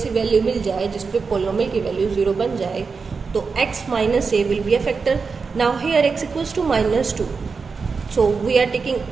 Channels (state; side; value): quieter; left; 4.9 dB